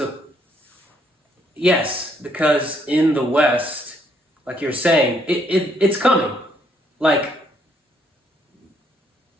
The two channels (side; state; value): both; normal; correlation 0.70